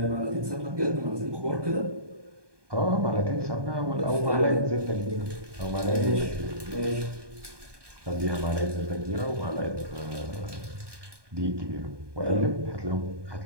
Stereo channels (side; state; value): left; late; 1.2 ms